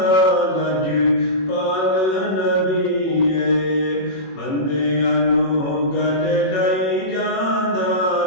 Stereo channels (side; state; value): right; late; 21 ms